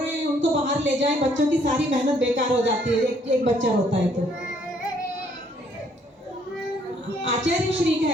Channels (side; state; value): both; normal; correlation 0.66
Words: हैं उनको बाहर ले जाएं, बच्चों की सारी मेहनत बेकार हो जाती है एक बच्चा रोता है तो। आचार्य श्री